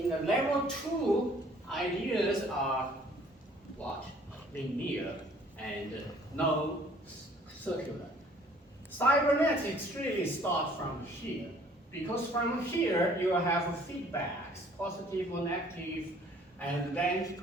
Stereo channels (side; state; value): both; normal; correlation 0.57